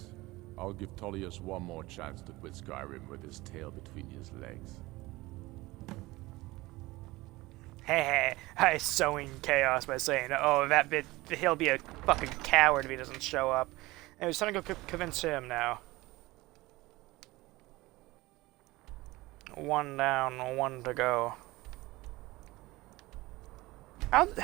I'll give Tullius one more chance to quit Skyrim with his tail between his legs. Hey, I sowing chaos by saying, oh, that bit, he'll be a fucking coward if he doesn't show up. And it's time to go convince him now. One down, one to go.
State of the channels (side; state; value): left; quieter; 20.2 dB